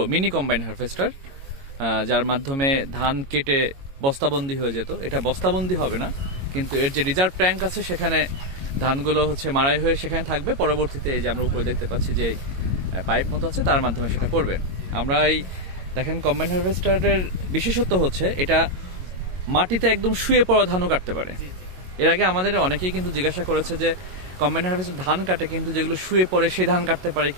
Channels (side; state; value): left; late; 22 ms